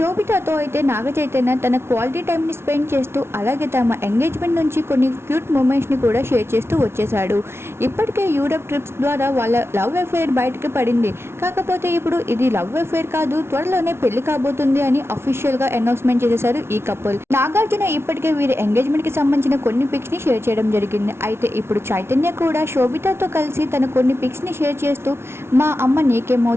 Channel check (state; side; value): late; left; 0.12 ms